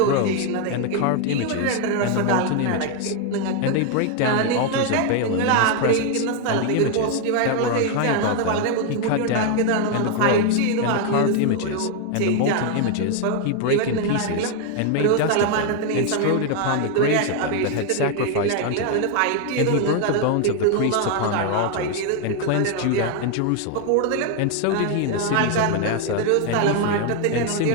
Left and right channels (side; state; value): both; different; correlation 0.01